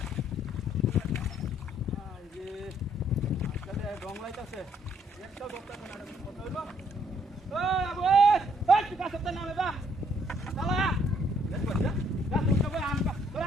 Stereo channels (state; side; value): normal; both; correlation 0.67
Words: এই আজকালে রং লাইতাছে একটা দোকান না কত হইলো ওই আবু ওই তুই কাছে নামে বা চালা দেখো যা যা তুই কবে আমকা